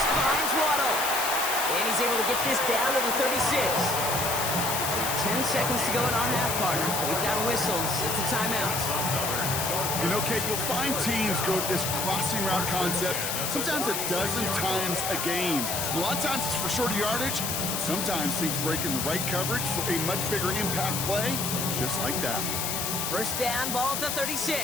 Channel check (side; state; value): left; noise; hiss, 1 dB below the sound